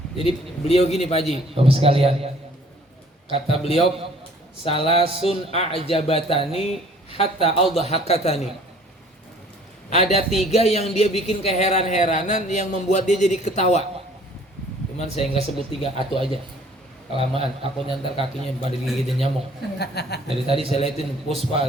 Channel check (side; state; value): both; normal; correlation 0.55